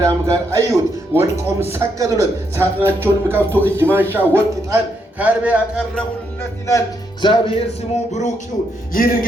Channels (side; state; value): both; normal; correlation 0.77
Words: ጋር አዩት። ወድቆም ሰገዱለት። ሳጥናቸውንም ከፍቶ እጅ ማንሻ፣ ወርቅ፣ ዕጣን፣ ከርቤ ያቀረቡለት ይላል። እግዚአብሔር ስሙ ብሩክ ይሁን። ይህንን